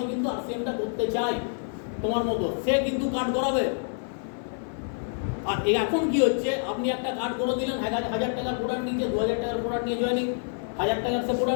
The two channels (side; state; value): right; silent; 60 dB below the other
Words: কিন্তু RCM-টা করতে চাই তোমার মতো। সে কিন্তু কার্ড করাবে। আর এখন কি হচ্ছে, আপনি একটা কার্ড করে দিলেন, 1,000 টাকার প্রোডাক্ট নিয়েছে, 2,000 টাকার প্রোডাক্ট নিয়ে জয়েনিং, 1,000 টাকার সে